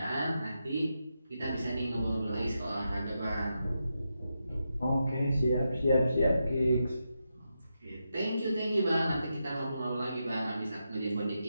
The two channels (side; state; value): both; inverted; correlation -0.86